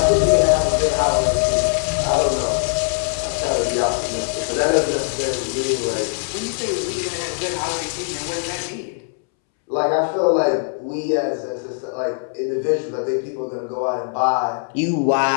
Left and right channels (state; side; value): silent; right; 65 dB below the other